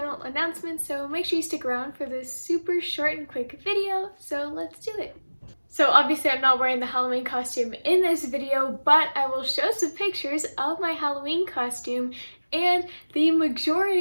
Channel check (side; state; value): both; inverted; correlation -1.00